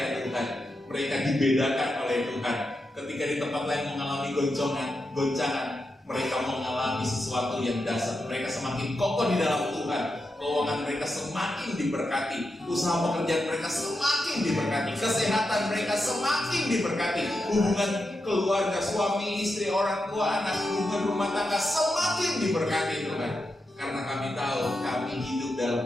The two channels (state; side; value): normal; both; correlation 0.87